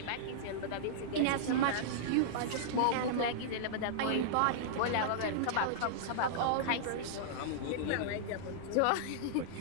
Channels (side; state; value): both; different; correlation -0.02